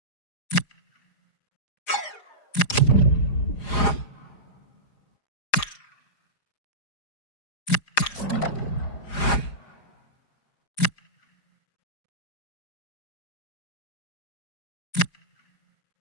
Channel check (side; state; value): right; late; 4.9 ms